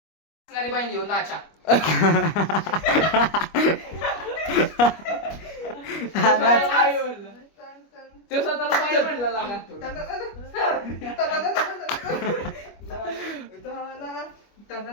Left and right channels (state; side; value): late; right; 25 ms